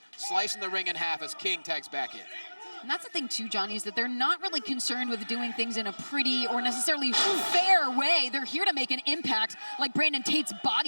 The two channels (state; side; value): inverted; both; correlation -1.00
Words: slicing the ring in half as King tags back in. And that's the thing too, Johnny, is that they're not really concerned with doing things in a pretty or necessarily fair way. They're here to make an impact like Brandon Tate's